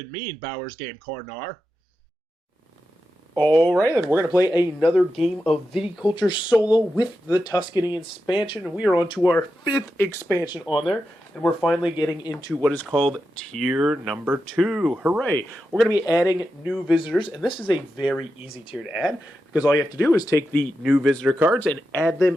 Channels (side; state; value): both; normal; correlation 0.89